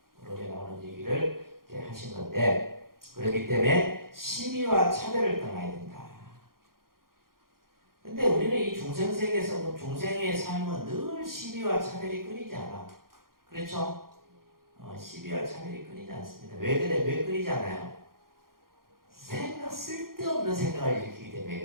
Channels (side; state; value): left; late; 0.92 ms